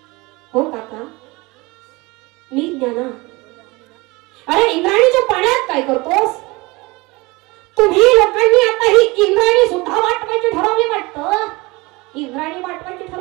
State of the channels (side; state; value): left; quieter; 23.7 dB